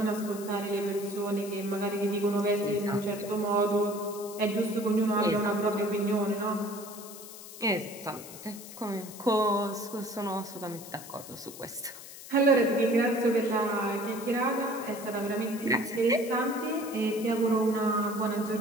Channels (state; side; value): noise; left; hiss, 14 dB below the sound